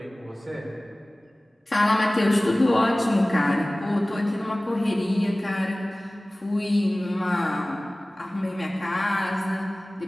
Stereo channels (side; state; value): both; normal; correlation 0.98